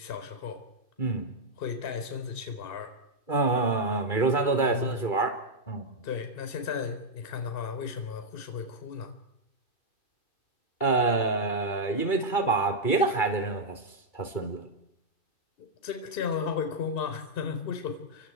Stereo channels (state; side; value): late; right; 2.3 ms